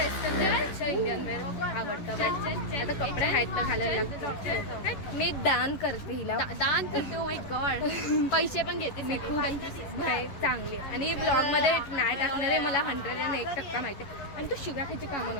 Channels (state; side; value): late; right; 11 ms